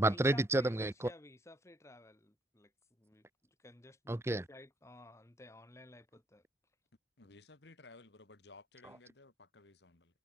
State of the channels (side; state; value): both; normal; correlation 0.69